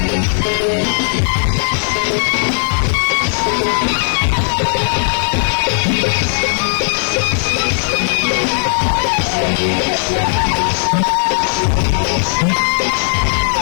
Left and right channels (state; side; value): silent; right; digital silence